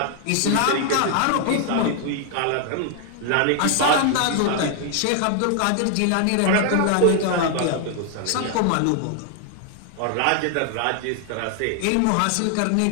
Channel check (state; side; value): different; both; correlation 0.00